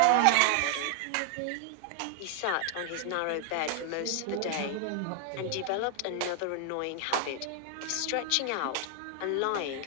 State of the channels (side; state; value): both; different; correlation 0.00